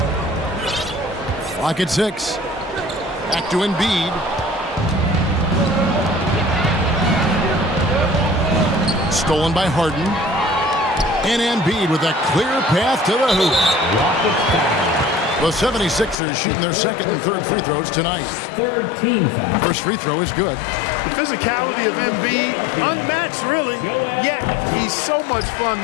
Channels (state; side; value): drops out; right; at 16.2 s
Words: Clock at 6. Back to Embiid. Stolen by Harden. And Embiid with a clear path to the hoop. The 76ers shooting their second and third free throws tonight. First free throw is good. The physicality of Embiid, unmatched really, yet he's so much fun